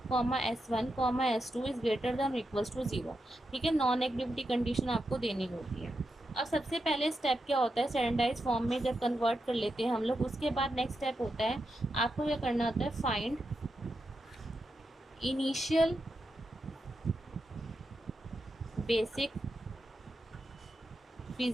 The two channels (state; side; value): normal; both; correlation 0.86